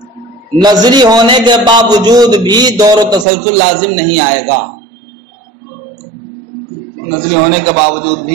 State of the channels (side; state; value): left; drops out; at 3.2 s